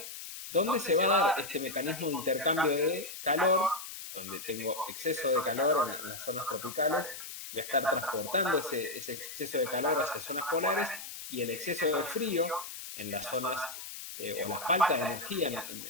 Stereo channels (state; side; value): noise; left; hiss, 10 dB below the sound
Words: donde se va a dar este mecanismo de intercambio de calor, donde tengo exceso de calor en las zonas tropicales, voy a estar transportando ese exceso de calor hacia zonas polares, y el exceso de frío en las zonas, o la falta de energía